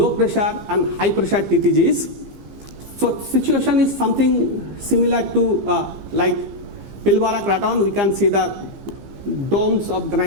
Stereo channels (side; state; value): left; late; 15 ms